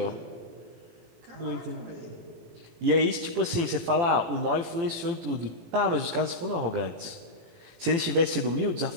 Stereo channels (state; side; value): late; left; 18 ms